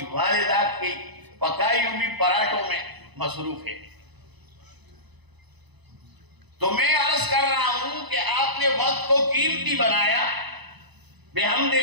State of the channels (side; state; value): left; late; 1.0 ms